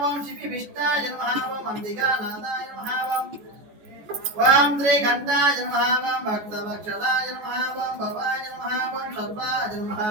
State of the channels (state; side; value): late; left; 14 ms